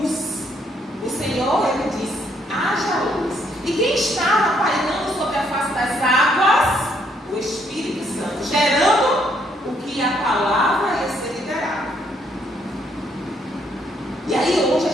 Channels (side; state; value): both; normal; correlation 0.70